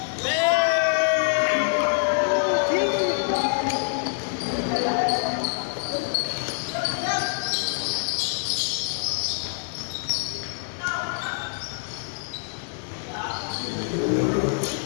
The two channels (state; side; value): silent; right; 61 dB below the other